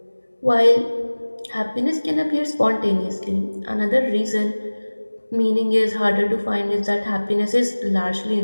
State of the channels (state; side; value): inverted; both; correlation -1.00